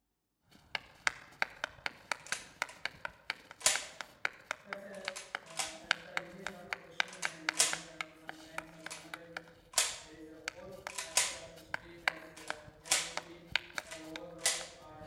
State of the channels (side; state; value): both; identical; correlation 1.00